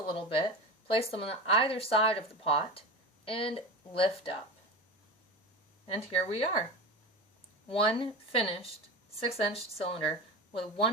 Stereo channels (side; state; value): both; normal; correlation 0.27